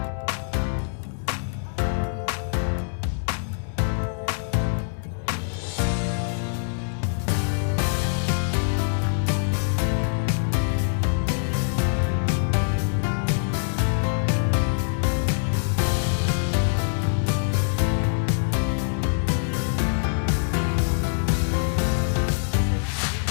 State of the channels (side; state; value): right; silent; digital silence